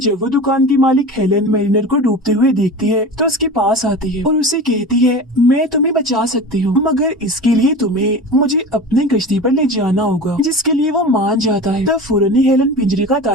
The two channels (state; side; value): normal; both; correlation 0.32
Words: वो दुकान की मालिक हेलन मैरिनर को डूबते हुए देखती है तो उसके पास आती है और उसे कहती है, मैं तुम्हें बचा सकती हूँ, मगर इसके लिए तुम्हें मुझे अपनी कश्ती पर ले जाना होगा, जिसके लिए वो मान जाता है। तब फौरन ही हेलन पिंजरे का